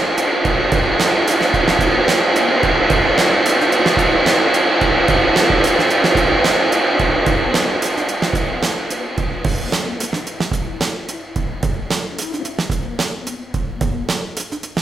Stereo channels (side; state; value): both; normal; correlation 0.86